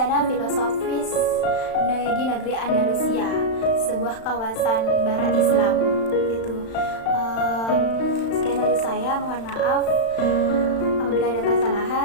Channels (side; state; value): right; late; 35 ms